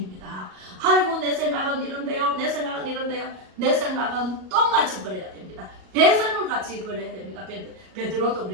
아이고 내 생각은 이런데요. 내 생각은 이런데요. 내 생각은 똥같이 버려야 됩니다. 배설물 같이 버려야 됩니다. 베드로도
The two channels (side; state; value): left; late; 38 ms